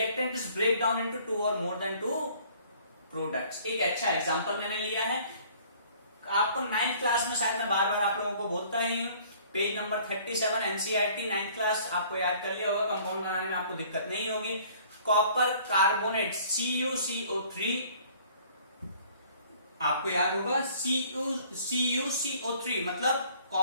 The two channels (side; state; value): both; inverted; correlation -0.55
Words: is break down into 2 or more than 2 products. एक अच्छा एग्जांपल मैंने लिया है, आपको 9th क्लास में शायद मैं बार बार आप लोगों को बोलता ही हूँ, page number 37 NCERT 9th class आपको याद कर लिया होगा, कंपाउंड बनाने में आपको दिक्कत नहीं होगी। कॉपर कार्बोनेट CuCO3 आपको याद होगा, CuCO3 मतलब